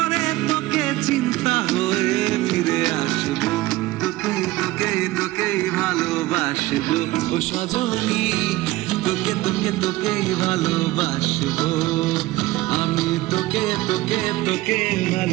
তোকে চিন্তা হয়ে ফিরে আসবো, তোকে তোকে তোকে ভালোবাসবো ও সজনী, তোকে তোকে তোকে ভালোবাসবো আমি, তোকে তোকে তোকে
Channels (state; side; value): quieter; left; 18.0 dB